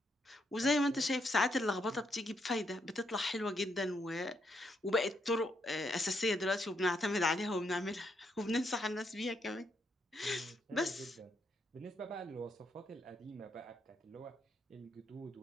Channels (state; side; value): normal; both; correlation 0.77